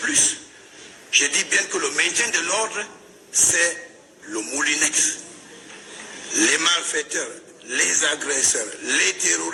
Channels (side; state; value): both; identical; correlation 1.00